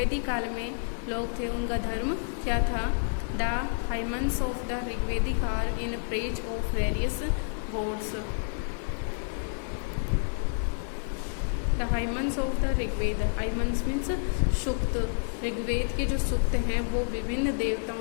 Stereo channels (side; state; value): right; silent; digital silence